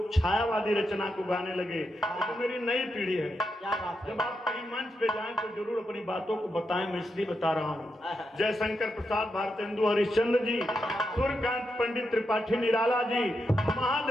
छायावादी रचना को गाने लगे। तो मेरी नई पीढ़ी है, जब आप कहीं मंच पे जाएं तो जरूर अपनी बातों को बताएं, मैं इसलिए बता रहा हूँ। जयशंकर प्रसाद, भारतेंदु हरिश्चंद्र जी, सूर्यकांत पंडित त्रिपाठी निराला जी,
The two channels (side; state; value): both; normal; correlation 0.85